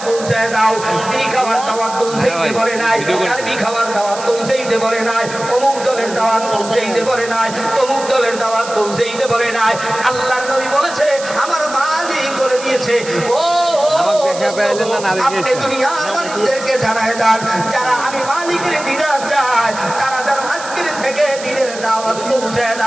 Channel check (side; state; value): right; noise; hiss, 12 dB below the sound